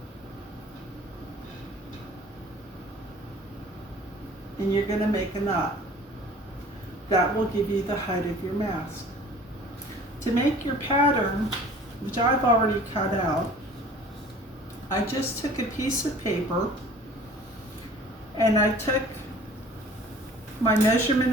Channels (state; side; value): normal; both; correlation 0.48